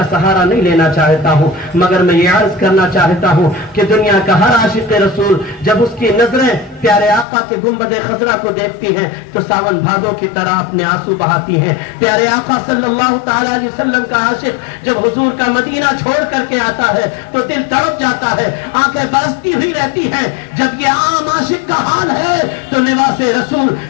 سہارا نہیں لینا چاہتا ہوں، مگر میں یہ عرض کرنا چاہتا ہوں کہ دنیا کا ہر عاشق رسول جب اس کی نظریں پیارے آقا کے گنبد خضرا کو دیکھتی ہیں تو ساون بھادوں کی طرح اپنے آنسو بہاتی ہیں۔ پیارے آقا صلی اللہ تعالی علیہ وسلم کا عاشق جب حضور کا مدینہ چھوڑ کر کے آتا ہے تو دل تڑپ جاتا ہے، آنکھیں برستی ہوئی رہتی ہیں۔ جب یہ عام عاشق کا حال ہے تو لباس رسول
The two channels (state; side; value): drops out; right; at 7.2 s